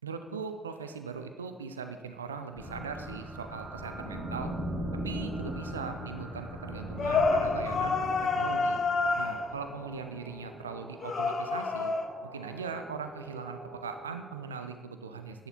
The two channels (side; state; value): both; normal; correlation 0.56